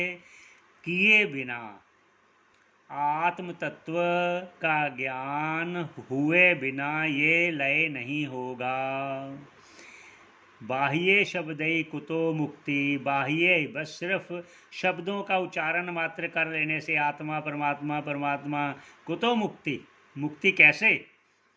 किए बिना, आत्म तत्व का ज्ञान हुए बिना ये लय नहीं होगा। बाह्य शब्दई कुतो मुक्ति, बाह्य बस सिर्फ शब्दों का उच्चारण मात्र कर लेने से आत्मा परमात्मा परमात्मा कुतो मुक्ति, मुक्ति कैसे?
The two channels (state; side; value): identical; both; correlation 1.00